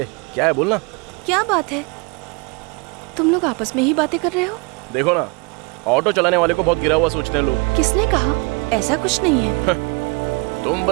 क्या है, बोलना। क्या बात है? तुम लोग आपस में ही बातें कर रहे हो? देखो ना, ऑटो चलाने वाले को बहुत गिरा हुआ सोचते हैं लोग। किसने कहा? ऐसा कुछ नहीं है। तुम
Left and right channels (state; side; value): quieter; left; 30.8 dB